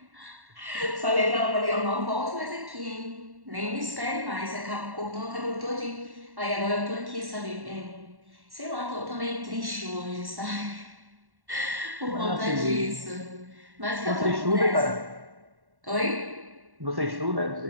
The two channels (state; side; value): late; left; 1.1 ms